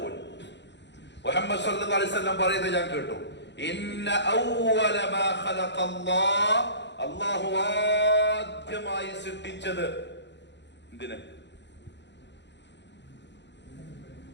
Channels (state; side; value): late; right; 0.51 ms